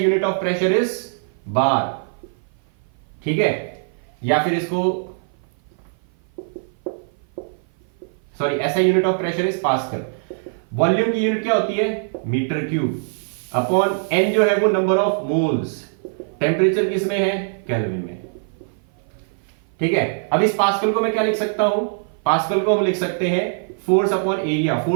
of pressure is bar, ठीक है, या फिर इसको sorry SI unit of pressure is pascal. Volume की यूनिट क्या होती है? मीटर क्यूब, अपॉन N जो है वो नंबर ऑफ मोल्स। टेम्परेचर किस में है? केल्विन में, ठीक है। अब इस पास्कल को मैं क्या लिख सकता हूं? पास्कल को हम लिख सकते हैं फोर्स अपॉन एरिया।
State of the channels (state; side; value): silent; left; 55 dB below the other